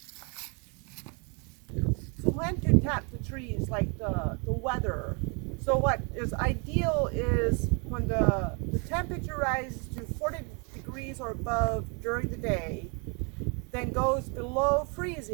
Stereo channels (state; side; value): quieter; left; 34.9 dB